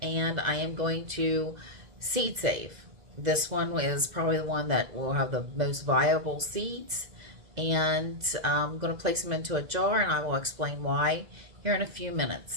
and I am going to seed save. This one is probably the one that will have the most viable seeds, and I'm going to place them into a jar, and I will explain why here in a few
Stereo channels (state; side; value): late; left; 2.0 ms